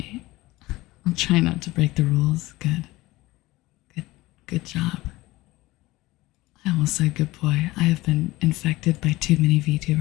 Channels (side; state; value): right; quieter; 19.3 dB